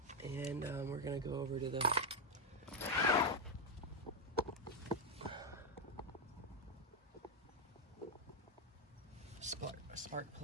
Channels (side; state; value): both; normal; correlation 0.04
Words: And we're gonna go over to the spark